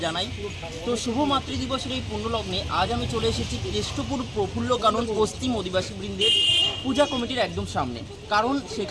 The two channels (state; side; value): identical; both; correlation 1.00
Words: জানাই। তো শুভ মাতৃ দিবসের এই পুণ্য লগ্নে আজ আমি চলে এসেছি কেষ্টপুর প্রফুল্ল কানন পশ্চিম অধিবাসী বৃন্দের পূজা কমিটির একদম সামনে, কারণ